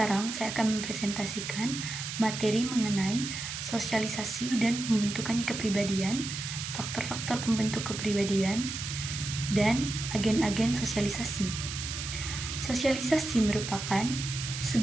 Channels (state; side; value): noise; right; hiss, 6 dB below the sound